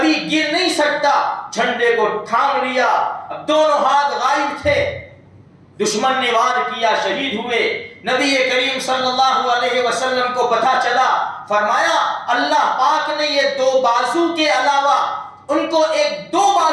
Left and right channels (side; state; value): both; identical; correlation 1.00